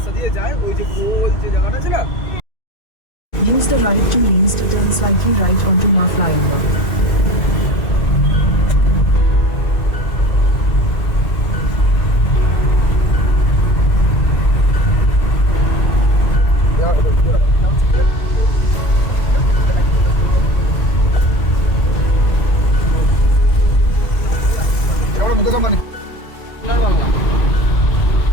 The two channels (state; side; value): late; right; 2.3 ms